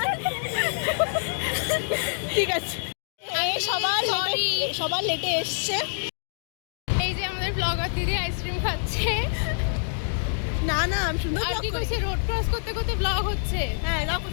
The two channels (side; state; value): right; silent; digital silence